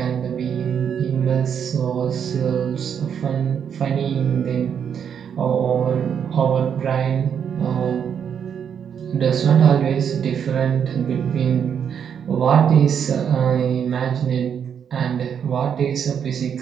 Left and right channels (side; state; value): left; quieter; 7.9 dB